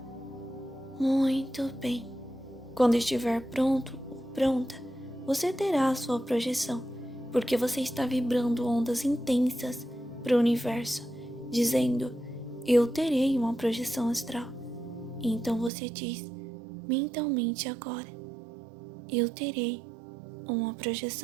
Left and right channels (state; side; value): drops out; left; at 15.7 s